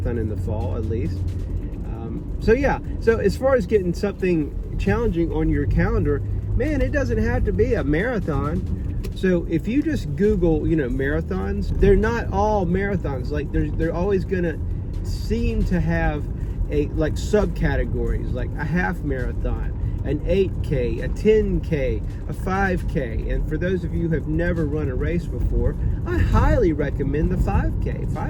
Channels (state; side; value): identical; both; correlation 1.00